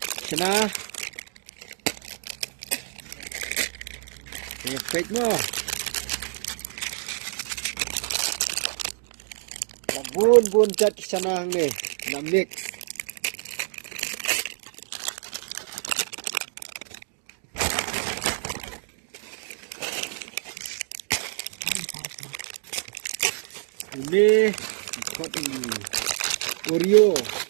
sana saya pet mo bun cat di sana ni nak mix. Ini Oreo.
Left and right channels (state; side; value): silent; left; digital silence